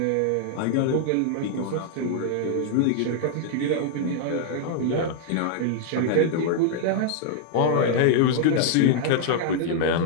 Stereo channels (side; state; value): both; different; correlation 0.00